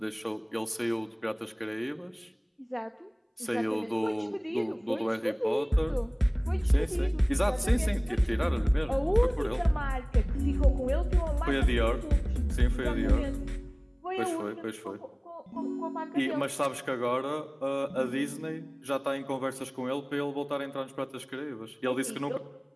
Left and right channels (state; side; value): identical; both; correlation 1.00